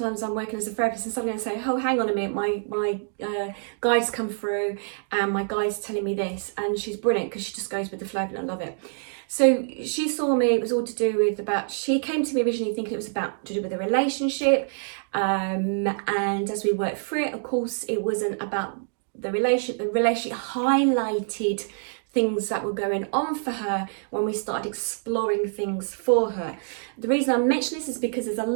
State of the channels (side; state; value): left; silent; digital silence